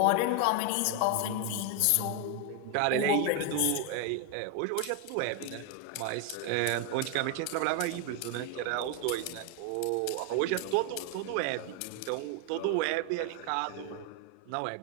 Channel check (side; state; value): both; different; correlation 0.01